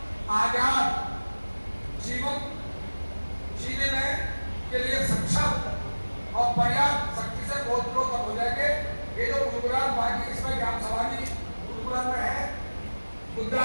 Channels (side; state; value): both; inverted; correlation -1.00